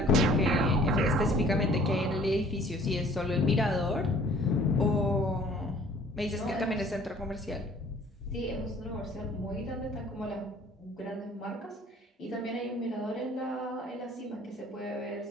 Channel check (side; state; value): both; normal; correlation 0.54